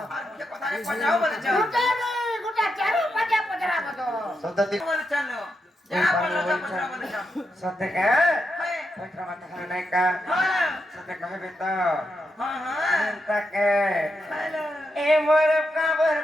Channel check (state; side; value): normal; both; correlation 0.84